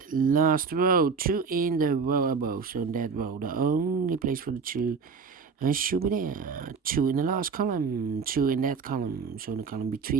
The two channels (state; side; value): quieter; left; 5.4 dB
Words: last row, 2 in the row above. So in that row, the only place for the 2 should be there. 2 in the last column, 2 in that column. So in the column